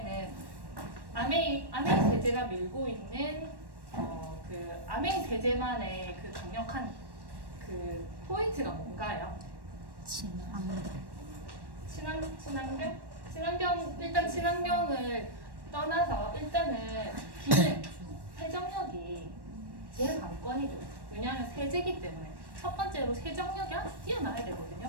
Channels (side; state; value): left; late; 1.1 ms